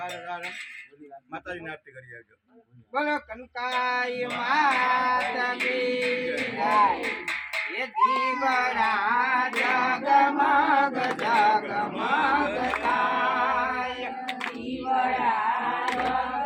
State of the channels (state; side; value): identical; both; correlation 1.00